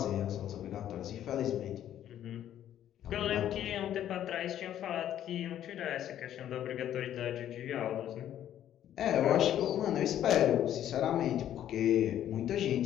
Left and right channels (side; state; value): right; quieter; 11.1 dB